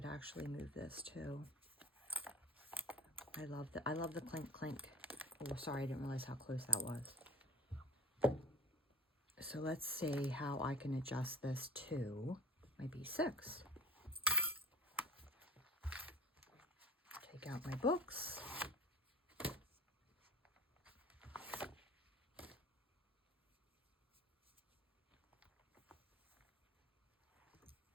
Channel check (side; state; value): both; normal; correlation 0.39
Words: actually move this too. I love the clink clink. Oh, sorry, I didn't realize how close that was. So let's see how I can adjust this to my B6. Take out my books.